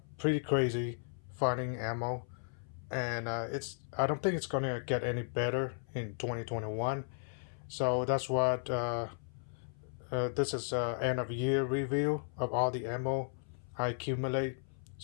pretty crazy finding ammo, and I don't think it's gonna get any better in 2021. So that's what this is end of year review of all the ammo I accumulate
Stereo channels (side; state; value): right; silent; 54 dB below the other